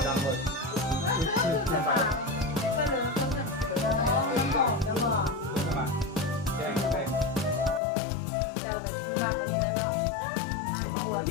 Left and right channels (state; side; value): drops out; right; at 7.8 s